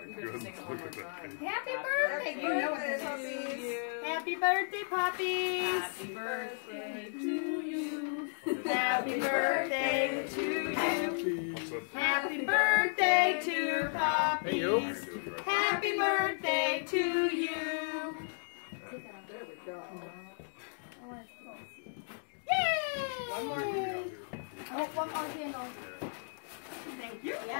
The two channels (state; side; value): silent; right; digital silence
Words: goodness, look at that. Happy birthday. You know what this is. Happy birthday, puppies. Happy birthday to you. Happy birthday to you. Happy birthday to puppies. Happy birthday to you. There we go. Yay! One more. Oh, one more candle. Thank you.